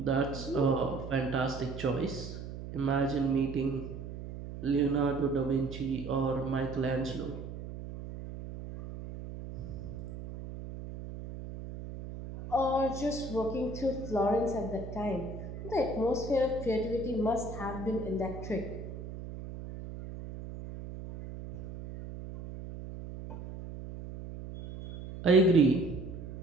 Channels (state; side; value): noise; right; hum, 10 dB below the sound